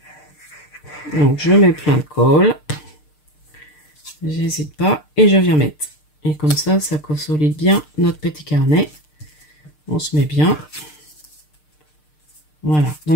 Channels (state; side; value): late; right; 6.6 ms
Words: Donc je mets plein de colle. J'hésite pas et je viens mettre. Et comme ça, ça consolide bien notre petit carnet. On se met bien. Voilà.